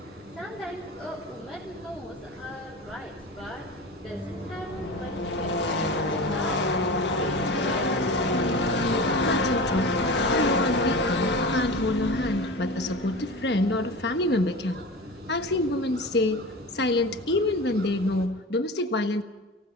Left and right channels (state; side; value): normal; both; correlation 0.31